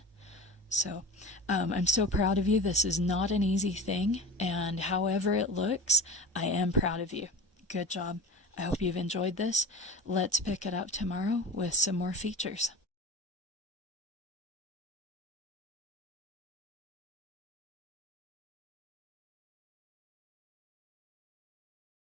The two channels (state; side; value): normal; both; correlation 0.31